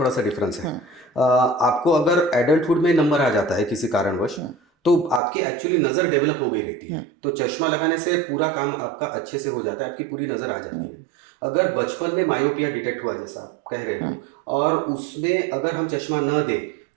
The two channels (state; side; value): drops out; left; at 5.2 s